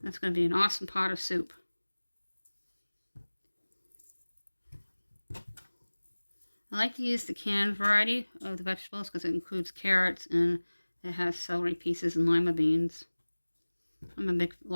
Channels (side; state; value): both; inverted; correlation -1.00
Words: That's going to be an awesome pot of soup. I like to use the canned variety of the vegetables because it includes carrots and it has celery pieces and lima beans. I'm a big